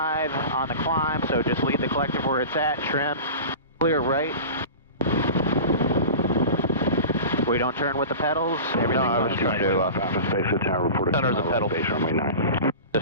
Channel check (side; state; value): both; inverted; correlation -0.34